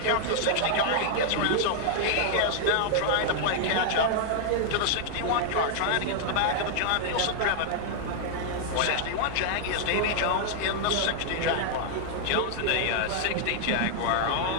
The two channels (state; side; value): different; both; correlation 0.00